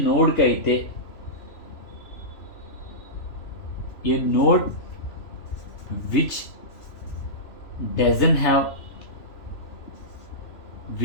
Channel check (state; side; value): late; right; 3.0 ms